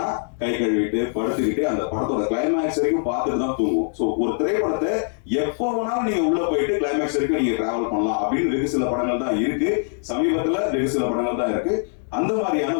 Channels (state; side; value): silent; right; 62 dB below the other